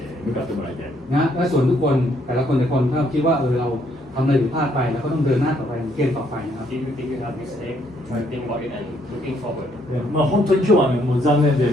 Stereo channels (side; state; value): both; normal; correlation 0.70